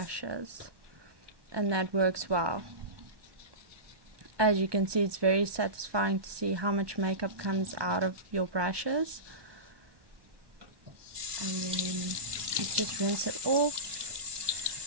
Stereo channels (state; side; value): late; left; 1.1 ms